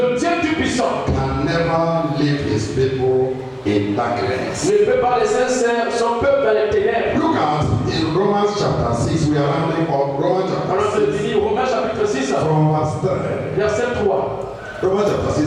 Dieu Tout-Puissant, can never leave his people in darkness. ne peut pas laisser son peuple dans les ténèbres. Look at in Romans chapter 6, we are rounding up Romans Alors je chapter 6 dis Romains chapitre 6, from verse 3. verset 3. Romans chapter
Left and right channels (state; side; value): identical; both; correlation 1.00